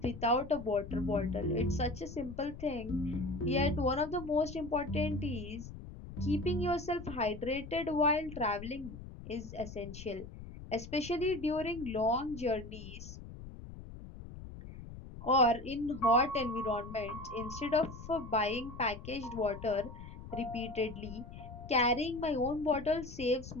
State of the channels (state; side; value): noise; left; rumble, 12 dB below the sound